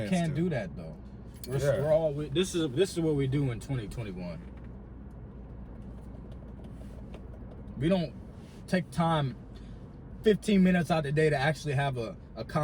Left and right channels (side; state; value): both; identical; correlation 1.00